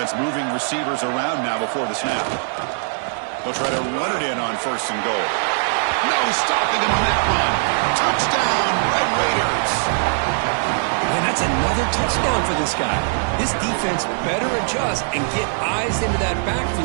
moving receivers around now before the snap. They'll try to run it in on 1st and goal. No stopping him on that run. Touchdown, Red Raiders. And that's another touchdown for this guy. This defense better adjust and get eyes into that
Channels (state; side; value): silent; left; digital silence